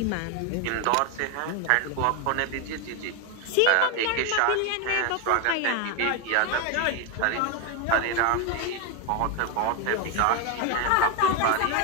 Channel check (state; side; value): different; both; correlation 0.01